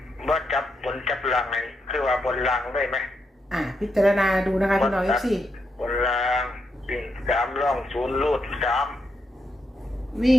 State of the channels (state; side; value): normal; both; correlation 0.81